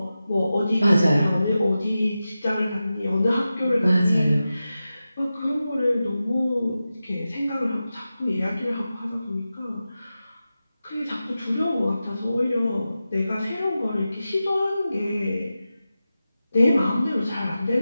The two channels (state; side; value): inverted; both; correlation -0.93